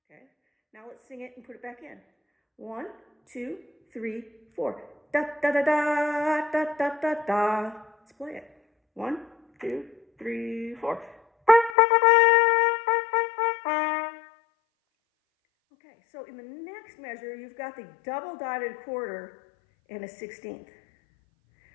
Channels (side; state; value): right; drops out; at 11.8 s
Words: Okay, now let's sing it and put it back in. 1, 2, 3, 4. Da da da da da da da da. Let's play it. 1, 2, 3, 4. Okay, so in the next measure, you've got the double dotted quarter and a 16th.